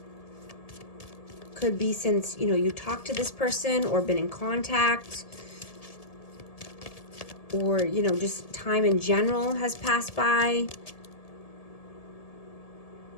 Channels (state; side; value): late; right; 1.7 ms